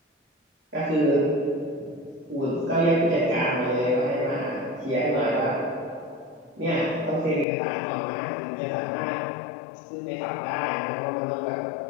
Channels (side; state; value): right; drops out; at 7.5 s